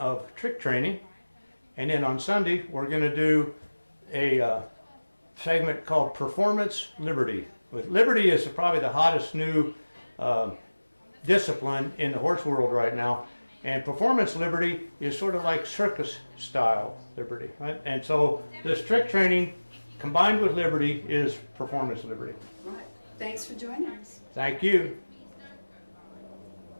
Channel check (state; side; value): inverted; both; correlation -1.00